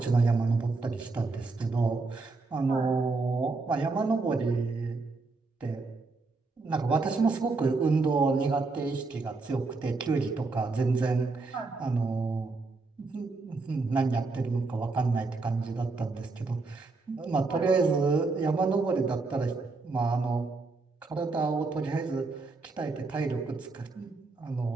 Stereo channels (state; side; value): quieter; left; 3.8 dB